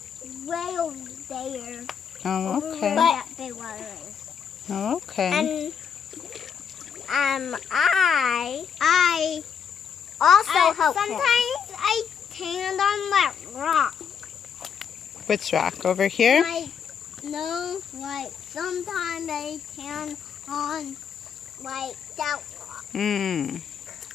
way over there. Oh, Over okay. where that big water is. Oh, okay. And I also help sometimes him. I stand on that rock. Which rock? Over here? Sometimes I stand on that rock.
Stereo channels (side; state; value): right; quieter; 7.3 dB